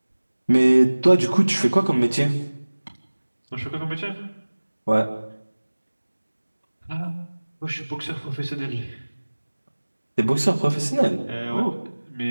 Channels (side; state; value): both; inverted; correlation -1.00